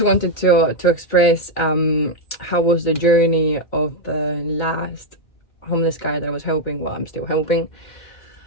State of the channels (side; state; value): right; late; 2.1 ms